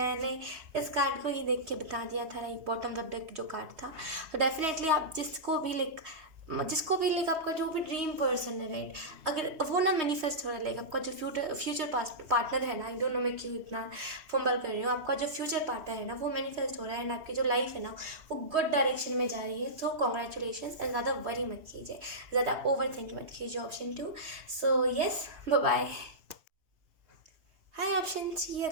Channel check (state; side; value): late; left; 3.2 ms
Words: इस कार्ड को ही देख के बता दिया था, लाइक बॉटम ऑफ डेक जो कार्ड था, तो डेफिनेटली आप जिसको भी लाइक आपका जो भी ड्रीम पर्सन है, राइट, अगर वो ना मैनिफेस्ट हो रहा है, लाइक आपका जो फ्यूचर पार्टनर है ना, आई डोंट नो मैं क्यों इतना फंबल कर रही हूँ, आपका जो फ्यूचर पार्टनर है ना वो मैनिफेस्ट हो रहा है, एंड आपकी जो लाइफ है ना वो गुड डायरेक्शन में जा रही है। सो कॉन्ग्रेचुलेशन, एंड ज़्यादा वरी मत कीजिए, ज़्यादा ओवर थिंक मत कीजिए option 2। So yes, bye bye. Hi option C,